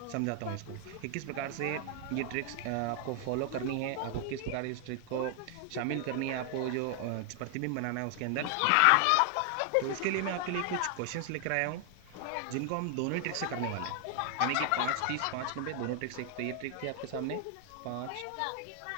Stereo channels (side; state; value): both; different; correlation 0.00